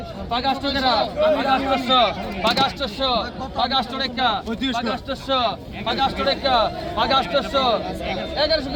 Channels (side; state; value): both; identical; correlation 1.00